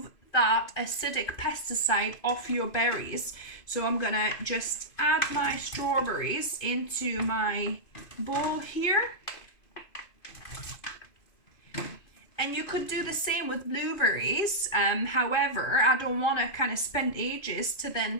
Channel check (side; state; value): right; late; 2.5 ms